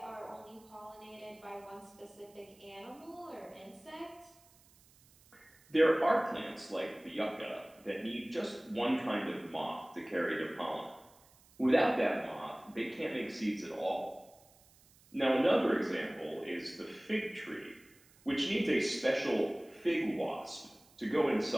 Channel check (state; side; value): noise; right; hiss, 28 dB below the sound